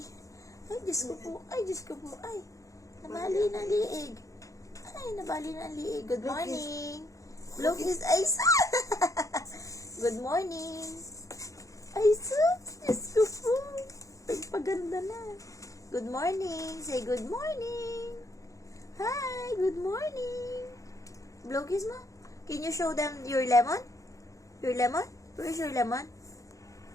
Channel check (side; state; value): right; late; 0.16 ms